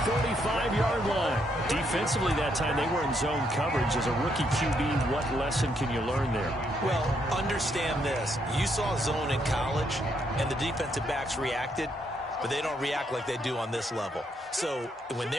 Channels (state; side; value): normal; both; correlation 0.75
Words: 45-yard line. Defensively that time, they were in zone coverage. As a rookie QB, what lesson can you learn there? Well, understand this. You saw zone in college, and the defensive backs reacted, but they don't react like they do on this level. So when